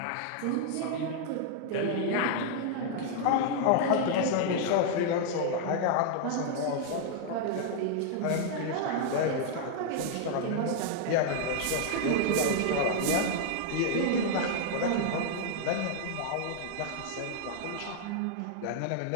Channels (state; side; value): different; both; correlation 0.00